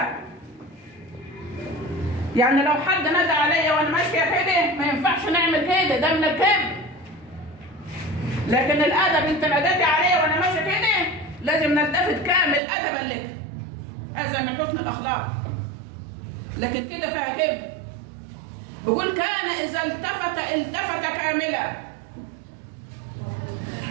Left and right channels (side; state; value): left; drops out; at 12.6 s